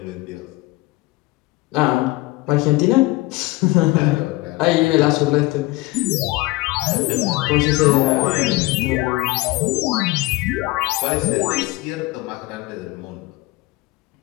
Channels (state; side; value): quieter; right; 20.5 dB